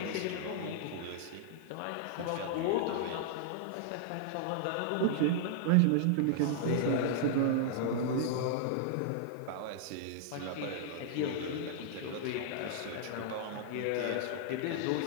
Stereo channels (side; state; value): both; different; correlation -0.01